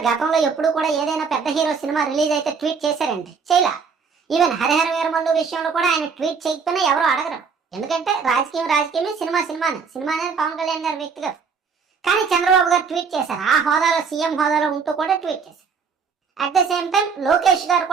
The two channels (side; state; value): left; quieter; 5.6 dB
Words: గతంలో ఎప్పుడు కూడా ఏదైనా పెద్ద హీరో సినిమా రిలీజ్ అయితే ట్వీట్ చేశారంటే చేయలా. ఈవెన్ హరిహర వీరమల్లు విషయంలో కూడా ఆయన ట్వీట్ చేయకపోయినా ఎవరో అడగరు. ఎందుకంటే రాజకీయమే, సినిమా అనేది పవన్ కళ్యాణ్ గారి వ్యక్తిగతం. కానీ చంద్రబాబు గారు ట్వీట్ చేశారు. ఆ హోదాలో, సీఎం హోదాలో ఉంటూ కూడా ట్వీట్ చేశారు. At the same time Lokesh గారు